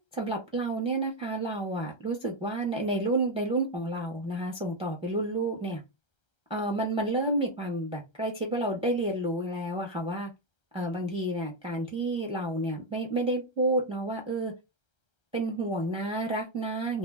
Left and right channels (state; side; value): late; right; 1.3 ms